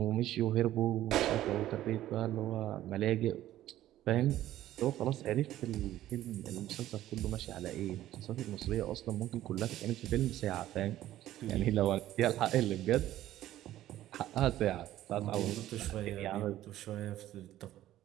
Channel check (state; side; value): quieter; left; 13.7 dB